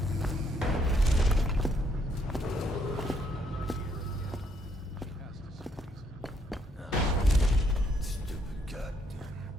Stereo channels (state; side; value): normal; both; correlation 0.71